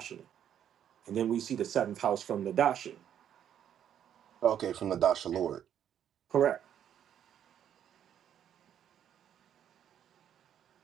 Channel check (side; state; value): left; quieter; 9.7 dB